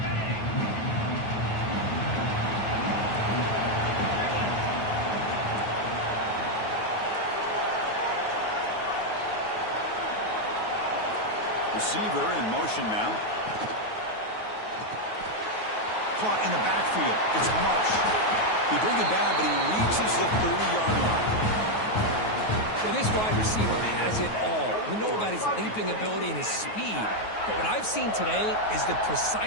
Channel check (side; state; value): right; late; 9.4 ms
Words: Receiver in motion now. Caught in the backfield. It's Marsh. He bring it down, but he reaches the 30-yard line. Well, this wide receiver has it all. We know about his leaping ability and his speed. But what I've seen today is the